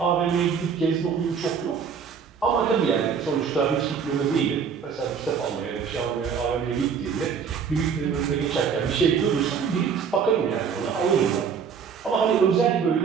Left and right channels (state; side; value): quieter; left; 6.6 dB